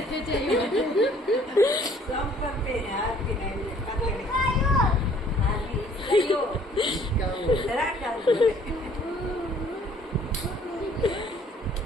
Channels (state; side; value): normal; both; correlation 0.58